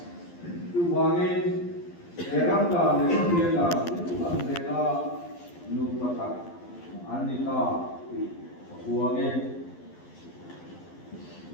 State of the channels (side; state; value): right; late; 11 ms